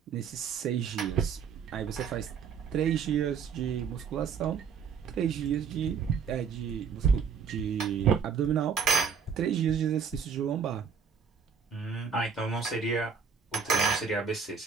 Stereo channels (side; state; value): left; quieter; 6.5 dB